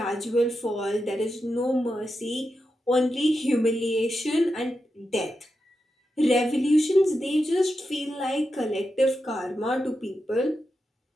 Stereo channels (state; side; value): normal; both; correlation 0.88